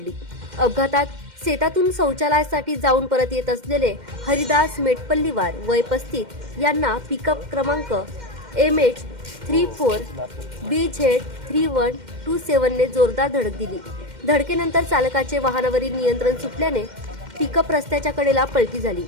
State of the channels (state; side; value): late; left; 2.1 ms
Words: अपघातात शेतातून शौचालयासाठी जाऊन परत येत असलेले हरिदास मेटपल्लीवार वय 35 यांना पिकअप क्रमांक MH34BZ3127 ने जोरदार धडक दिली. धडकेनंतर चालकाचे वाहनावरील नियंत्रण सुटल्याने पिकअप रस्त्याच्या कडेला पलटी झाली.